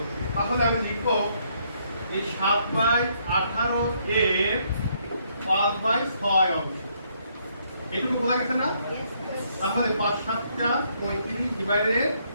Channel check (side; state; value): both; inverted; correlation -0.71